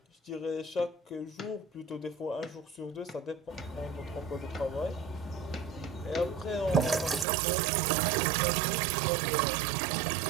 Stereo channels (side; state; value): left; drops out; at 7.2 s